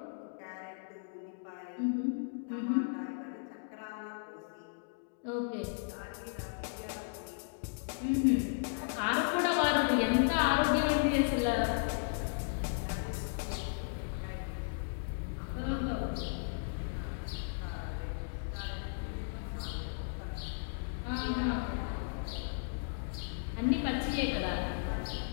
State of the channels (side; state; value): right; silent; digital silence